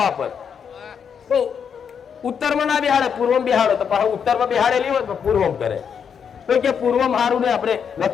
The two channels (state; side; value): quieter; right; 7.2 dB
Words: પર તો ઉત્તરમાં ના બેહાડે, પૂર્વમાં બેહાડો તો પાછું ઉત્તરમાં બેહાડેલી હોય તો પૂર્વમાં કરે. તો કે પૂર્વમાં સારું ને આપણે